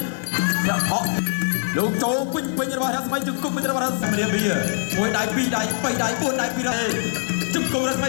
យ៉ាហក់លោកចូលពេញរបស់រស្មីជង្គង់ពេញរបស់រស្មីរៀបវាមួយដៃ2ដៃ3ដៃ4ដៃ2ដៃជង្គង់រស្មី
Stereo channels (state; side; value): silent; right; digital silence